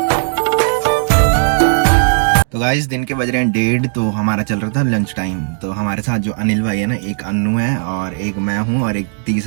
तो गाइस दिन के बज रहे हैं 1:30, तो हमारा चल रहा था लंच टाइम। तो हमारे साथ जो अनिल भाई है ना, एक अन्नू है और एक मैं हूँ और एक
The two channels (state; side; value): silent; left; digital silence